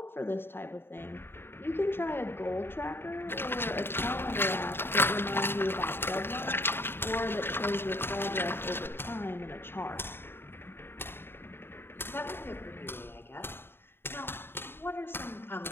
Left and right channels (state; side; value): late; right; 0.11 ms